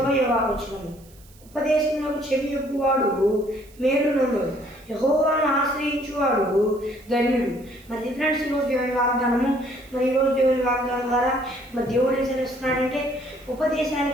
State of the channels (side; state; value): right; noise; hiss, 27 dB below the sound